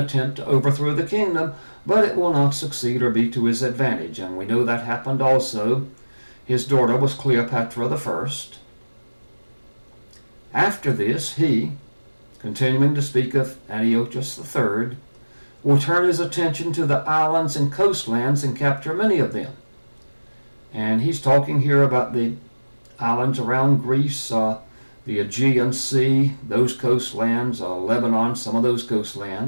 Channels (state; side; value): inverted; both; correlation -1.00